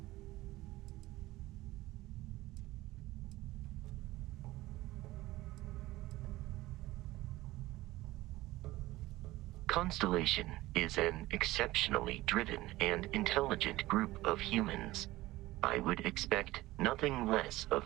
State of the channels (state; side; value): quieter; left; 17.8 dB